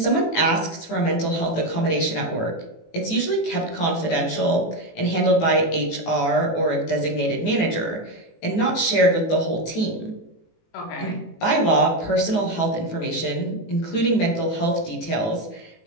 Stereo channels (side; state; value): right; late; 18 ms